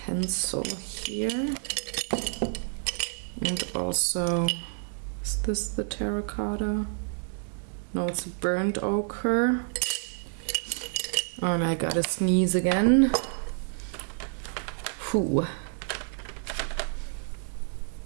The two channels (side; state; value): left; silent; 59 dB below the other